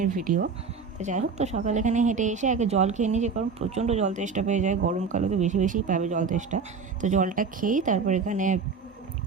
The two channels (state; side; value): quieter; left; 5.2 dB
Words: ভিডিও। তো যাই হোক, তো সকালে এখানে হেঁটে এসে আগে জল খেয়ে নিয়েছি, কারণ প্রচণ্ড জল তেষ্টা পেয়ে যায়। গরমকালে তো বেশি বেশিই পাবে জল তেষ্টা। তো জলটা খেয়েই তারপর এখানে